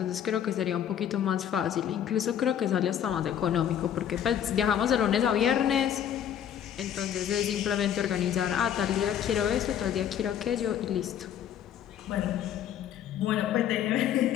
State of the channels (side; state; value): right; quieter; 9.7 dB